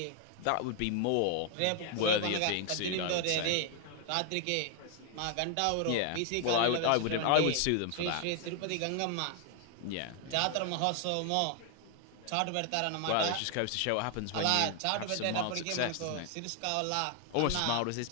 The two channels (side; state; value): both; different; correlation 0.00